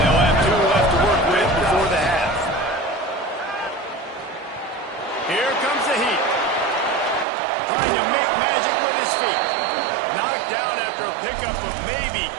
have 2 left to work with before the half. Here comes the Heat. Trying to make magic with his feet. Knocked down after a pickup of maybe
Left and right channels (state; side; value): drops out; left; at 7.2 s